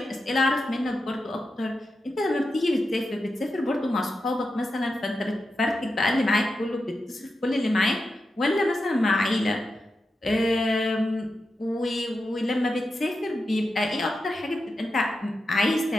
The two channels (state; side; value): normal; both; correlation 0.89